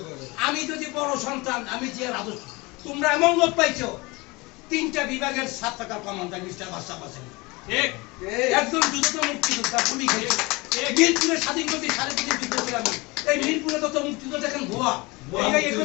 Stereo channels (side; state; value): right; quieter; 24.5 dB